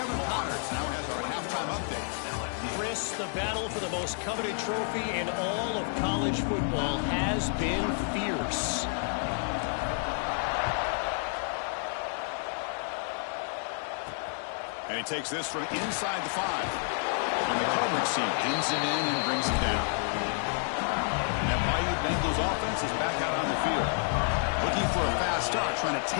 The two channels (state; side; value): silent; right; 58 dB below the other